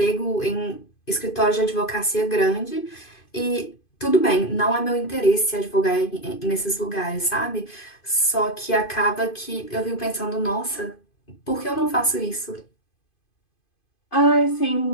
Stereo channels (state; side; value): late; right; 2.5 ms